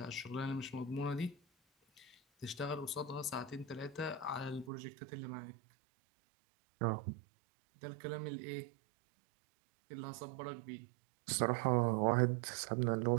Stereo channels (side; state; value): left; drops out; at 4.7 s